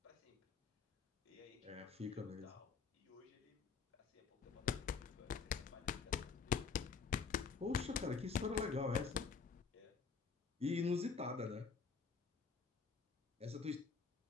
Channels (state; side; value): quieter; right; 5.5 dB